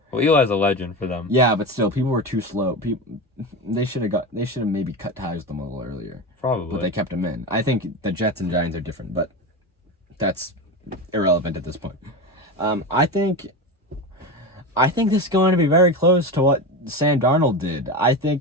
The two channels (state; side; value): normal; both; correlation 0.22